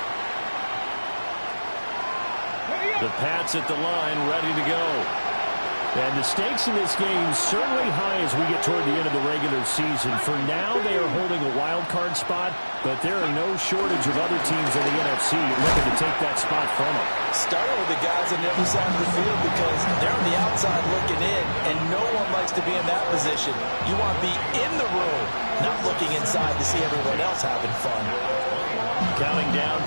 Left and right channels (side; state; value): both; inverted; correlation -1.00